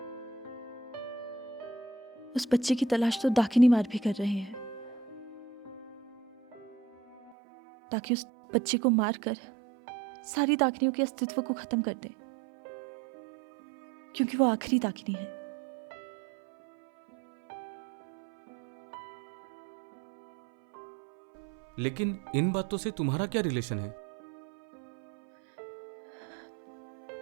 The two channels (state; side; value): drops out; left; at 7.4 s